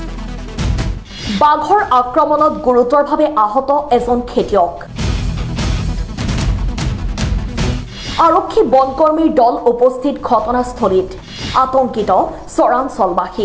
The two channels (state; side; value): identical; both; correlation 1.00